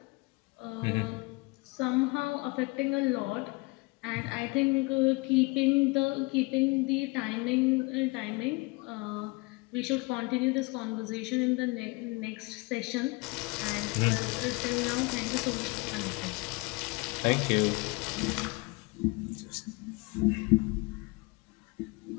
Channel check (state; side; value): quieter; right; 26.2 dB